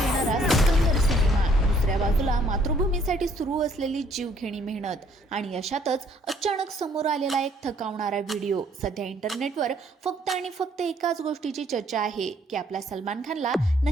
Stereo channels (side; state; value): both; normal; correlation 0.63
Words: येणारा सिकंदर सिनेमा, दुसऱ्या बाजूला मातृभूमीसाठी सुरू असलेली जीवघेणी मेहनत आणि अशातच अचानक समोर आलेला एक थकावणारा व्हिडिओ. सध्या इंटरनेटवर फक्त आणि फक्त एकाच गोष्टीची चर्चा आहे की आपल्या सलमान खानला